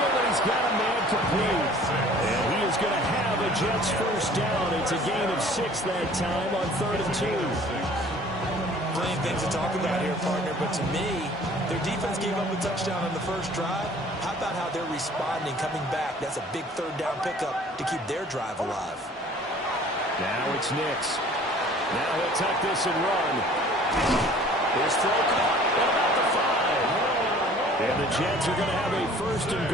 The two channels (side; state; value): both; normal; correlation 0.51